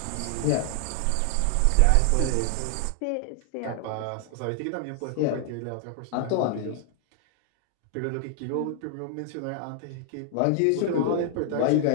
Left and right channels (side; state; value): both; different; correlation 0.00